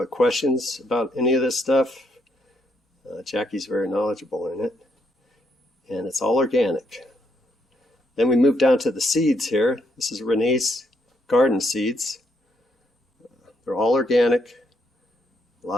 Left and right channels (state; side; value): normal; both; correlation 0.74